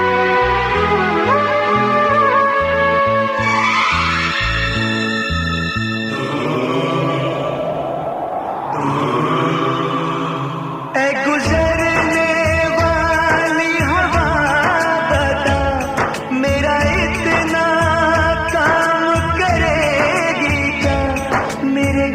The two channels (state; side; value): identical; both; correlation 1.00